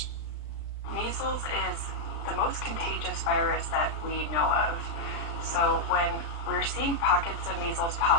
Measles is the most contagious virus that we know of. So when we're seeing pockets of measles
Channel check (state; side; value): late; right; 35 ms